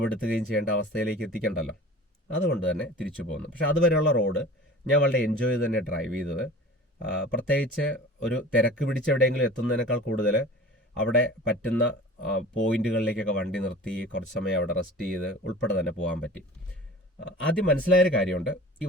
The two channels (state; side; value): normal; both; correlation 0.40